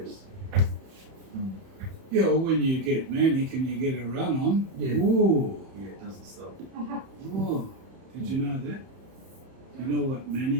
Yeah, well, when you get manic and you get a run on, Yeah. ooh, Yeah, it doesn't stop. ooh. Did you know that? You know what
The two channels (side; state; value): left; late; 31 ms